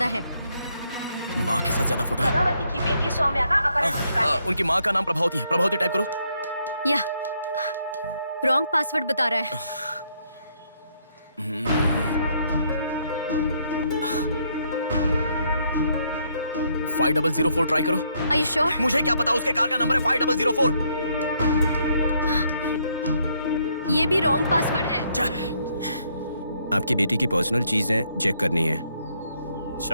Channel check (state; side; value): inverted; both; correlation -0.72